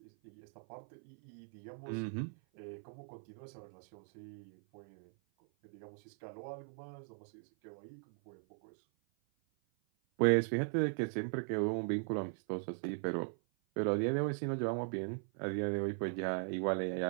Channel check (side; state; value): left; silent; 52 dB below the other